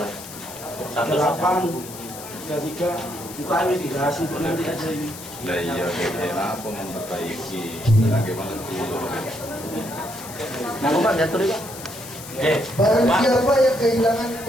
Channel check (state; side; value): noise; left; hiss, 13 dB below the sound